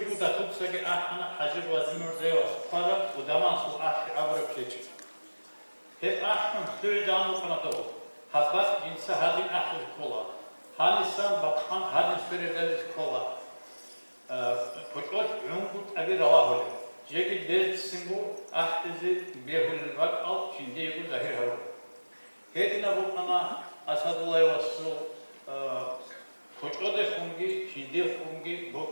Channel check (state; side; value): inverted; both; correlation -1.00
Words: bu da tutsa ki ahana hacı vazimur zeyos para bu daman su ahri avrup keçi. Hep ahın sürüden okuna doğu. Habbat cinsi hadin ahli kola. Hanisan bakhan hadin sürüden kola. Koçoş yungut abi rava holi. Jeki dertsin bu ahdizi behulil vak al şimdi bu zahir haru. Hedine bu ana Asadullah Vasu koço de fungi, şimdi fungi,